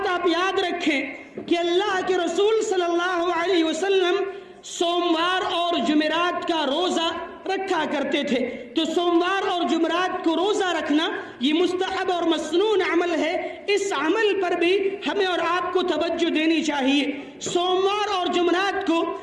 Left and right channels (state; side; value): identical; both; correlation 1.00